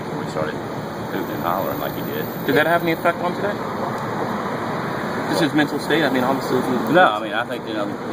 he started hooting and hollering like he did. Did that have any effect on today? Just his mental state? I mean, obviously. No, I mean, I think,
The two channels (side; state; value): both; identical; correlation 1.00